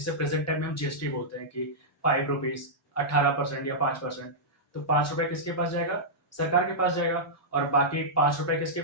प्रेजेंट टाइम में हम जीएसटी बोलते हैं कि 5 रुपीज, 18% या 5%। तो 5 रुपए किसके पास जाएगा, सरकार के पास जाएगा। और बाकी 5 रुपए किसके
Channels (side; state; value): both; normal; correlation -0.11